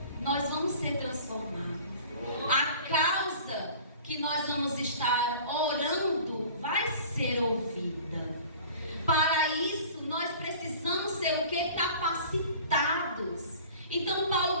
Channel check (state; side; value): inverted; both; correlation -0.44